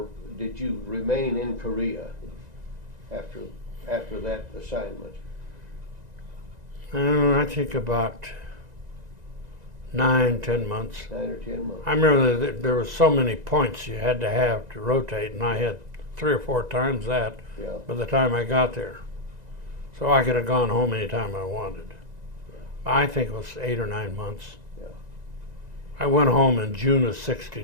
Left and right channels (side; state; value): left; late; 1.9 ms